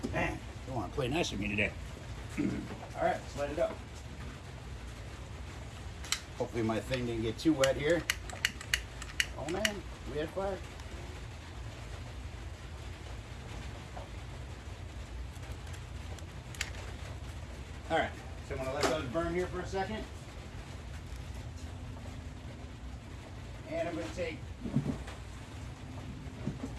Man, don't want to play nice with me today. All right, let's light it up. Hopefully my thing didn't get too wet here. Oh man, we had fire. All right, so I'm gonna let those burn here for a second. And I'm gonna take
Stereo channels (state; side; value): identical; both; correlation 1.00